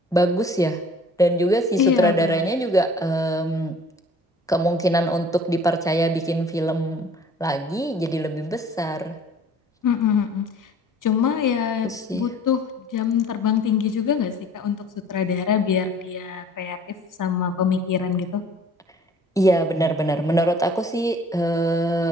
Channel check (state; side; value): normal; both; correlation 0.50